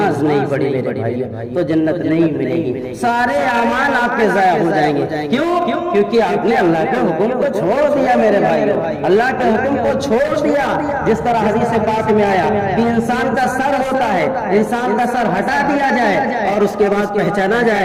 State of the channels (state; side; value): identical; both; correlation 1.00